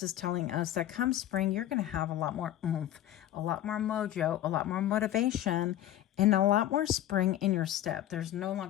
telling us that come spring, you're going to have a lot more oomph, a lot more mojo, a lot more motivation, and a lot more spring in your step. There's no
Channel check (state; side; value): quieter; right; 12.6 dB